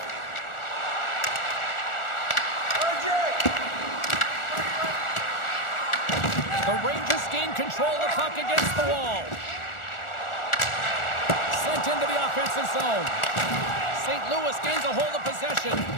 The Rangers gain control of the puck against the wall. Sent into the offensive zone. St. Louis gains a hold of possession.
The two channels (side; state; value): right; late; 1.4 ms